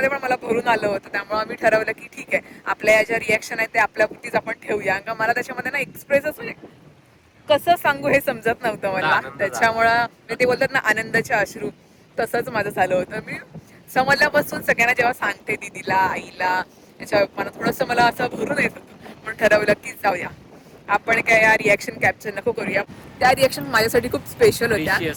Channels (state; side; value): identical; both; correlation 1.00